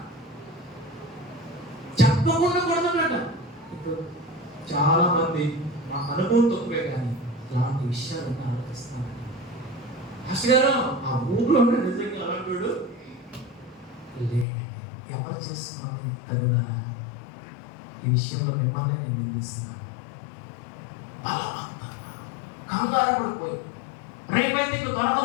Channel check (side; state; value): right; drops out; at 14.5 s